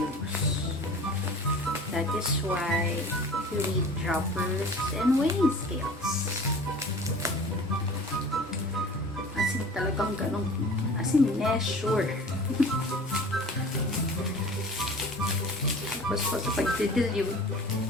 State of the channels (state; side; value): normal; both; correlation 0.42